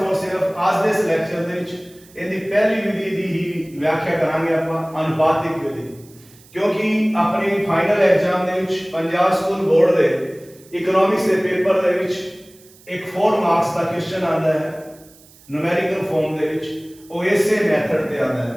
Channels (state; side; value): noise; right; hiss, 26 dB below the sound